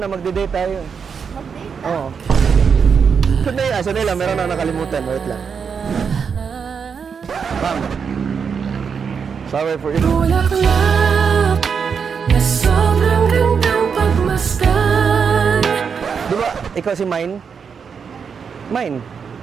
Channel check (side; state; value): left; quieter; 6.3 dB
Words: magde-date tayo. Mag-date? Oo. Sandali lang, meron na nakalimutan. Wait lang. Ma'am. Sorry for you. Bulaklak na sobrang gandang pagmasdan. Di ba, ikaw si Mine? Mine?